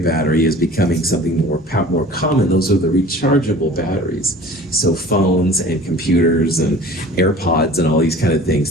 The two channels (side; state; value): both; normal; correlation 0.44